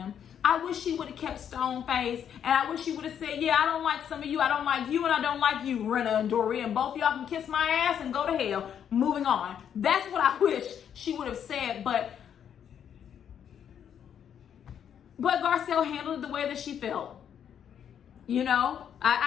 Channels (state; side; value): quieter; right; 8.8 dB